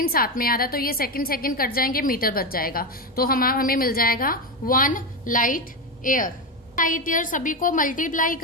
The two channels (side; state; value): both; normal; correlation 0.13